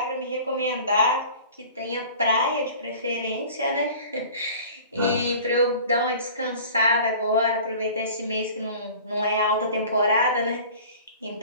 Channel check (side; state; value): both; inverted; correlation -0.43